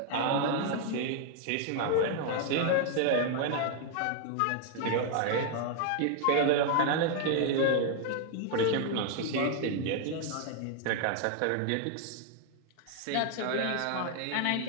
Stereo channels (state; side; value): different; both; correlation 0.00